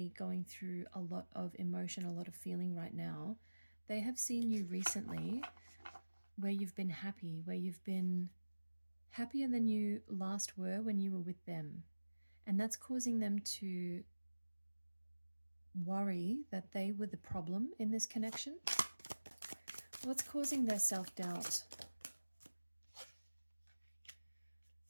going through a lot of emotion, a lot of feeling right now, they have seen you recently where you've been happy, where you've been happier than you last were when you were with them. And that's causing them to worry that they were the problem in this connection. What's causing their self-doubt?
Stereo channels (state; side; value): inverted; both; correlation -1.00